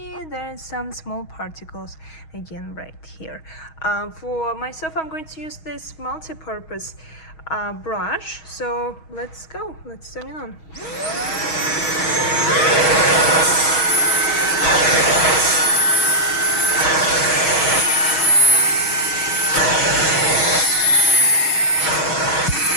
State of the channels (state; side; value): late; right; 6.3 ms